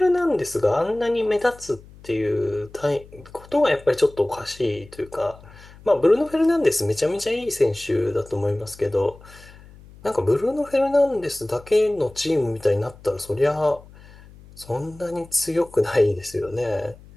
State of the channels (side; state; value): left; noise; hum, 22 dB below the sound